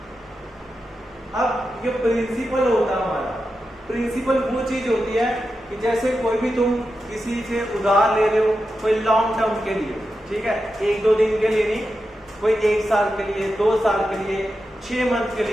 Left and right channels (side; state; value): both; normal; correlation 0.89